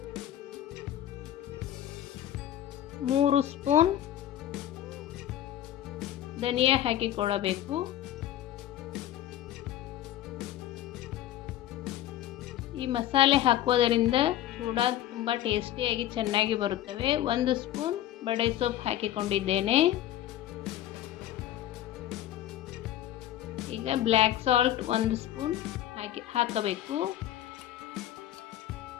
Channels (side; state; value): right; quieter; 12.6 dB